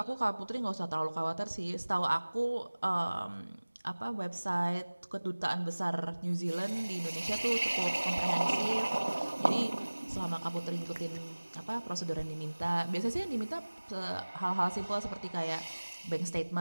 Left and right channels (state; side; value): inverted; both; correlation -1.00